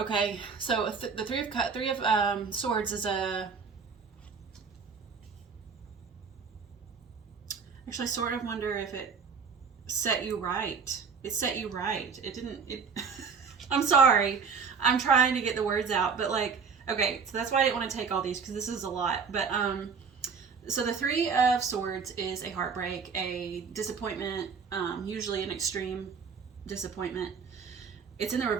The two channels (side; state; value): left; quieter; 5.7 dB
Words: So the Three of Swords is a, actually I sort of wonder if it set you right. It set you right. It didn't, I'm sorry. I'm trying to get the words out, but like, okay, so that's why I didn't want to take all these, because this is a lot. But so the Three of Swords is a heartbreak, a disappointment, usually an extreme disappointment. It's in the